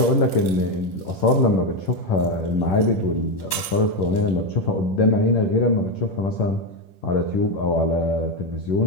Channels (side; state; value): right; late; 10 ms